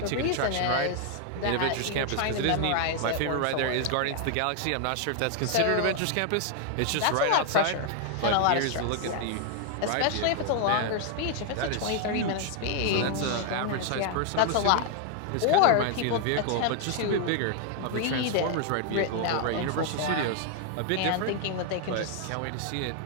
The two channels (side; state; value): both; different; correlation 0.00